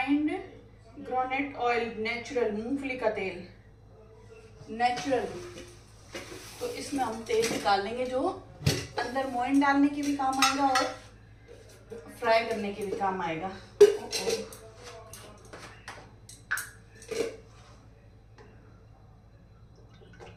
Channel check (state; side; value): identical; both; correlation 1.00